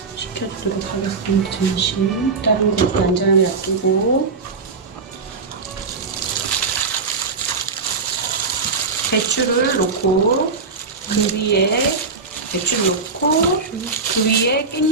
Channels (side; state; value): left; quieter; 4.4 dB